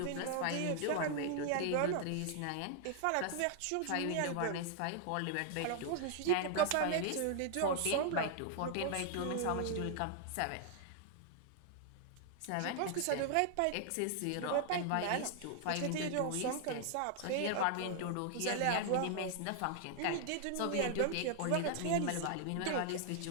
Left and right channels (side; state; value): both; different; correlation 0.00